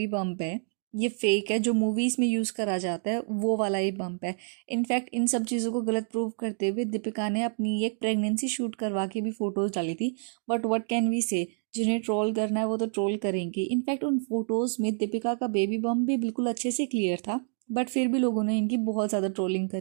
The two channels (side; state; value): left; silent; 59 dB below the other